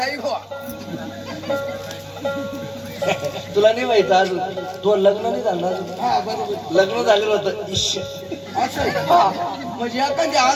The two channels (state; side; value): identical; both; correlation 1.00